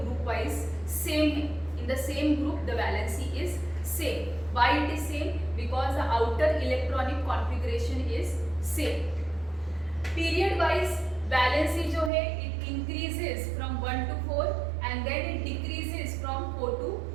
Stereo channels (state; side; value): drops out; left; at 12.1 s